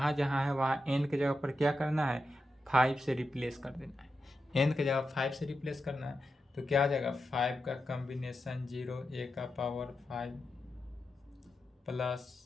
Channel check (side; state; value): both; normal; correlation 0.89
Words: जहाँ है वहाँ n के जगह पर क्या करना है, 5 से रिप्लेस कर देना है। n के जगह 5 से रिप्लेस करना है तो क्या आ जाएगा, 5 का कॉम्बिनेशन 0 a का पावर 5 प्लस